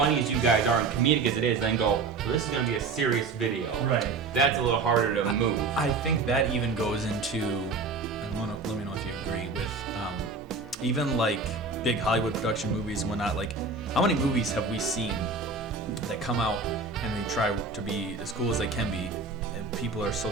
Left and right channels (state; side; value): quieter; left; 4.2 dB